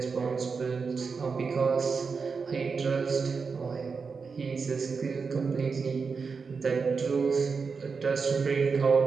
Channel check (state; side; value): quieter; left; 5.1 dB